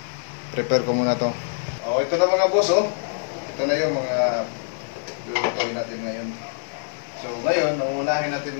Prepare ko muna to. Oh, ito na mga boss, oh. Ito na yung mga lulutuin natin ngayon. So, ngayon, nauunahin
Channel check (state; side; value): silent; right; 62 dB below the other